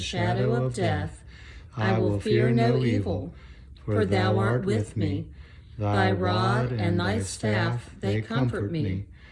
of death, I will fear no evil, for thou art with me. Thy rod and thy staff, they comfort me.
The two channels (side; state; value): both; identical; correlation 1.00